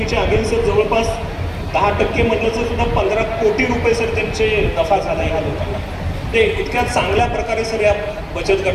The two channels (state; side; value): identical; both; correlation 1.00